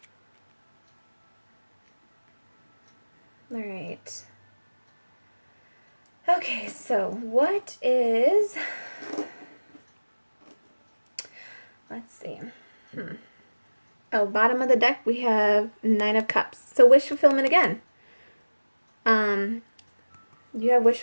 All right. Okay, so what is... Let's see. Oh, bottom of the deck, we have 9 of Cups. So wish fulfillment again. You have wish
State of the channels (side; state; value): both; inverted; correlation -1.00